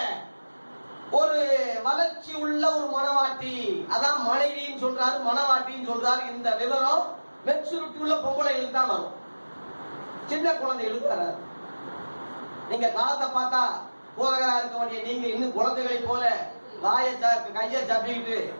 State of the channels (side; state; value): both; inverted; correlation -1.00